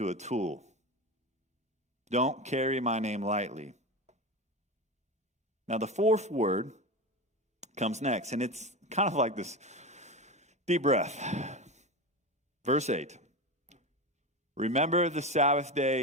a tool. Don't carry my name lightly. Now, the fourth word comes next, and it's kind of like this deep breath. Verse 8. Remember the Sabbath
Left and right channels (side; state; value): both; normal; correlation 0.22